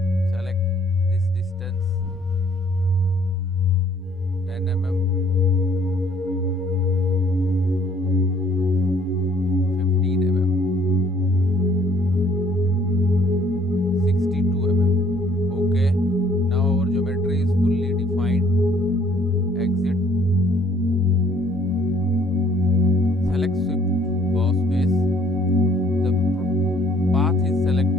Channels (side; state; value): both; normal; correlation 0.61